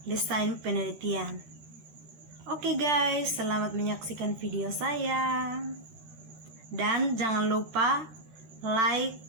desain penelitian. Oke guys, selamat menyaksikan video saya. Dan jangan lupa like,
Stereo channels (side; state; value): left; late; 13 ms